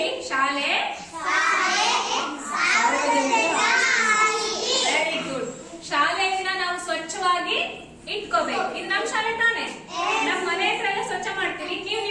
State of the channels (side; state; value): both; identical; correlation 1.00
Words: ಶಾಲೆ ವೆರಿ ಗುಡ್. ಶಾಲೆಯನ್ನ ನಾವು ಸ್ವಚ್ಛವಾಗಿ ಇಟ್ಕೋಬೇಕು. ಇದು ನಮ್ ಶಾಲೆ ತಾನೆ? ನಮ್ ಮನೆ ಹತ್ರ ಎಲ್ಲ ಸ್ವಚ್ಛ ಮಾಡ್ತೀವಿ. ನೀವು